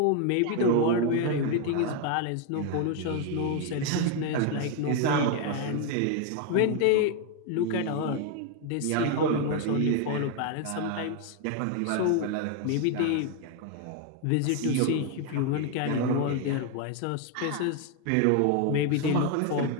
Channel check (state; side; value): different; both; correlation 0.01